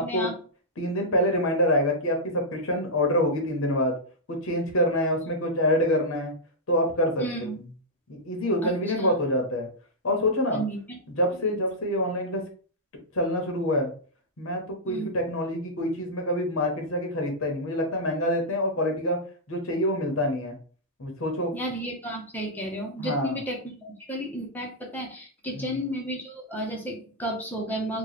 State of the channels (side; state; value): both; normal; correlation -0.08